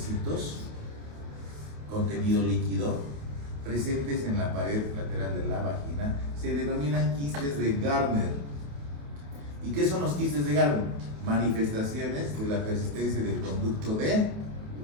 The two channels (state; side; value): late; left; 28 ms